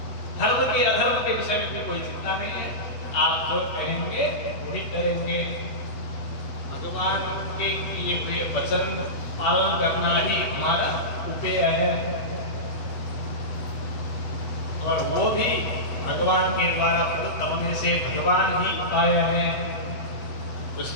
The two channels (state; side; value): late; right; 8.1 ms